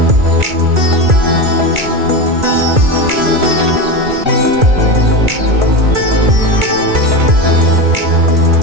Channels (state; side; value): late; left; 2.3 ms